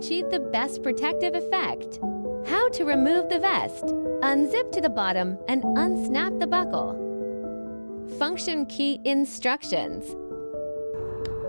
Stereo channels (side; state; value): both; inverted; correlation -1.00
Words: the best protective effect. How to remove the vest. Unzip to the bottom and unsnap the buckle. Function key instructions.